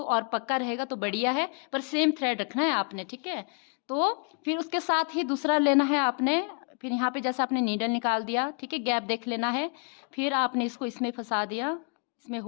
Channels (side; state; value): right; quieter; 38.4 dB